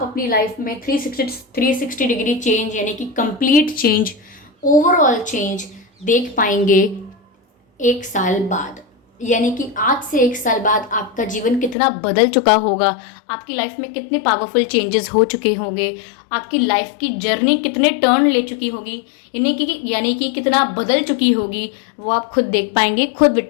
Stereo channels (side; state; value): right; drops out; at 11.8 s